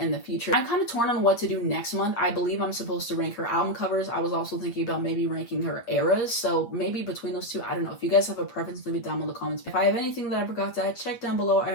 the future. I'm kind of torn on what to do next month. I believe I'm supposed to rank her album covers. I was also thinking about maybe ranking her eras, so maybe between those two, I don't know. If you guys have a preference, leave it down in the comments. If I have anything that I forgot to add, check down below. I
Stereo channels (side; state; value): right; late; 8.5 ms